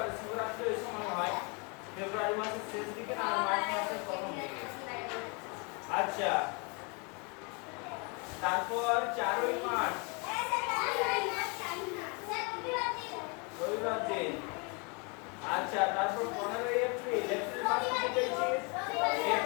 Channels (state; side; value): quieter; right; 32.7 dB